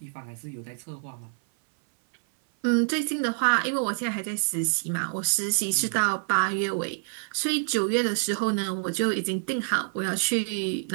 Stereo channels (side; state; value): left; silent; 58 dB below the other